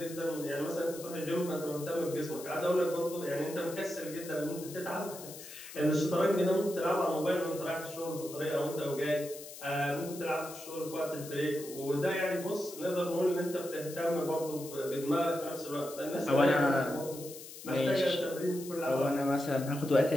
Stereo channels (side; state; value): left; noise; hiss, 14 dB below the sound